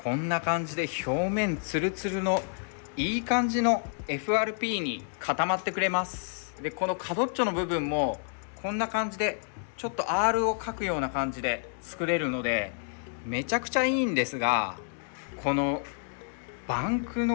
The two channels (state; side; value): silent; right; 58 dB below the other